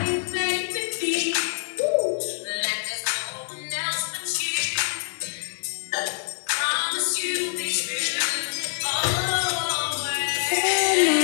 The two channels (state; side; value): silent; right; 59 dB below the other